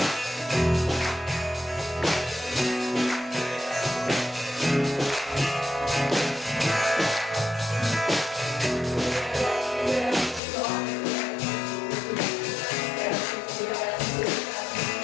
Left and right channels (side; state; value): right; drops out; at 10.4 s